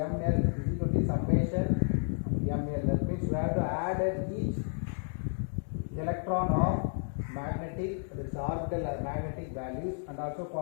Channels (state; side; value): silent; right; 57 dB below the other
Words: is equal to summation of ML. That means we have to add at each electron of magnetic, that is orbital magnetic values, and also